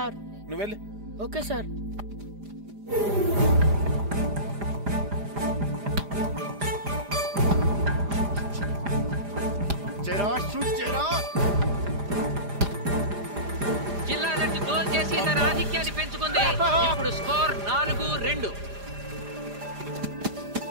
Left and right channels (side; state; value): left; late; 4.9 ms